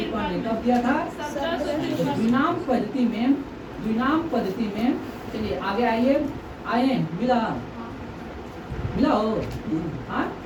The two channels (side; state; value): both; identical; correlation 1.00